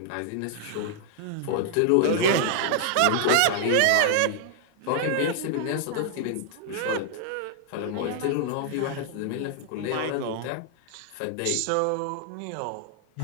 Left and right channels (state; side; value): different; both; correlation -0.01